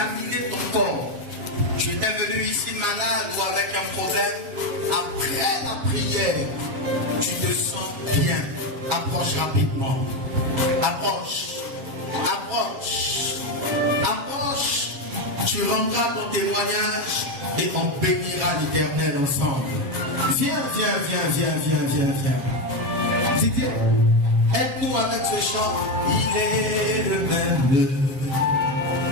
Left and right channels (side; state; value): left; late; 7.3 ms